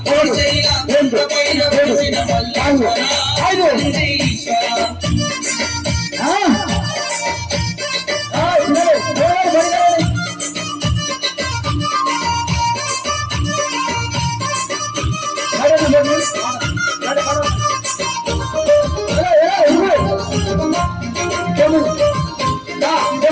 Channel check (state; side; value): identical; both; correlation 1.00